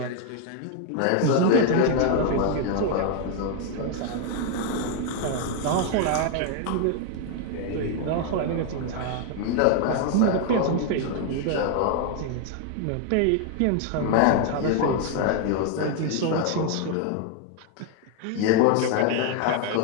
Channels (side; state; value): both; different; correlation 0.00